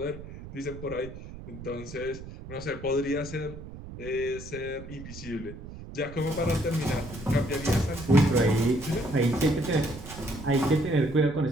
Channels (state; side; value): noise; right; rumble, 13 dB below the sound